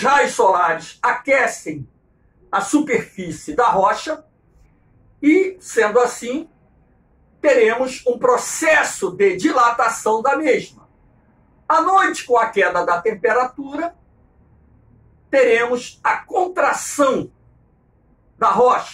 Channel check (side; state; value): both; identical; correlation 1.00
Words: raios solares aquecem a superfície da rocha e, sendo assim, teremos um processo de dilatação da mesma. À noite, com a queda da temperatura, teremos a contração da